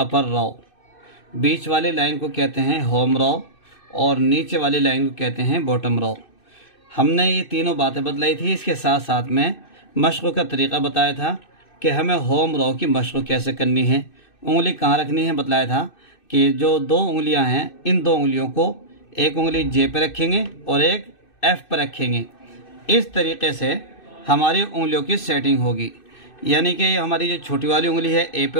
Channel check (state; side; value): late; right; 2.6 ms